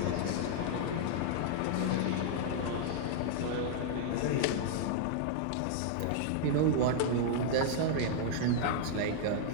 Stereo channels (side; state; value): both; different; correlation -0.01